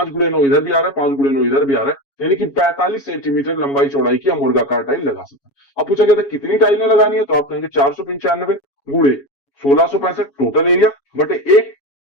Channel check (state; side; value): late; right; 7.2 ms